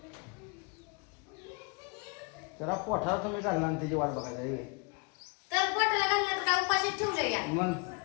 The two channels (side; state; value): right; quieter; 32.3 dB